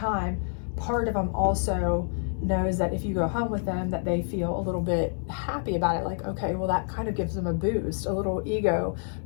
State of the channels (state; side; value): silent; right; 60 dB below the other